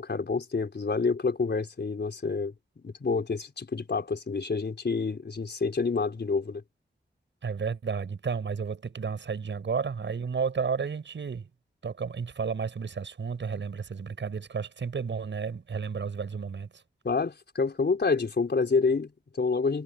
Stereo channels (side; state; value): both; normal; correlation 0.33